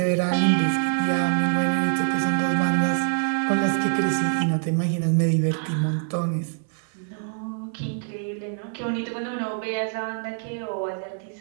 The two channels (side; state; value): left; silent; 62 dB below the other